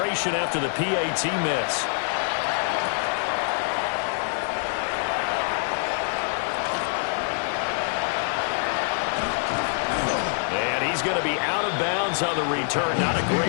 after the PAT miss. And he's going to be out of bounds on the return. Not a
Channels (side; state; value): right; silent; digital silence